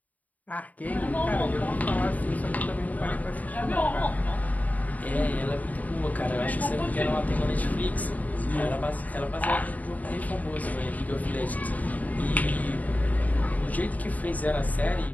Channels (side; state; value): right; late; 0.075 ms